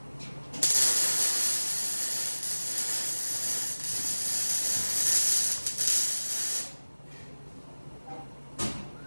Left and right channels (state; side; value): inverted; both; correlation -1.00